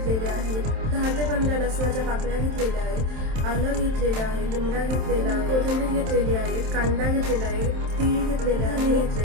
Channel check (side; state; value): left; late; 27 ms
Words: आहेत, 10 ते 15 लसणाच्या पाकळ्या घेतलेल्या आहेत, आलं घेतलेलं आहे, लिंबडा घेतलेला आहे, कोथिंबीर घेतलेली आहे, कांदा घेतलेला आहे, तीळ घेतलेले आहे,